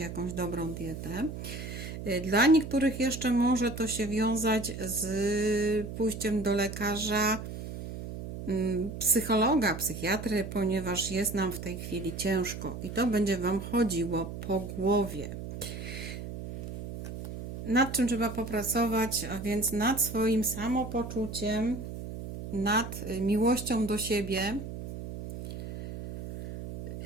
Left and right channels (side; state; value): right; noise; hum, 8 dB below the sound